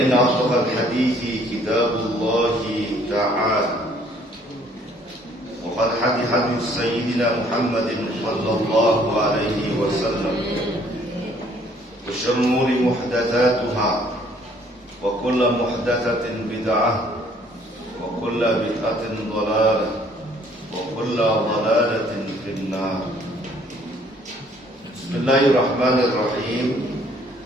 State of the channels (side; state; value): both; normal; correlation 0.61